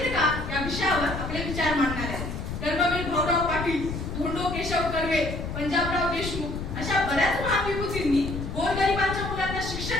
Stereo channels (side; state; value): left; noise; rumble, 6 dB below the sound